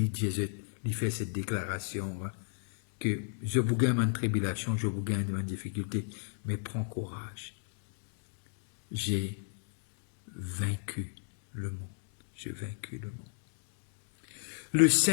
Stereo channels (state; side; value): silent; right; digital silence